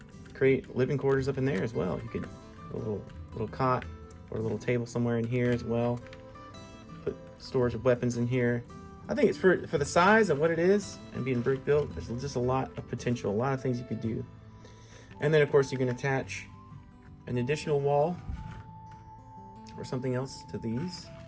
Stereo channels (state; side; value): identical; both; correlation 1.00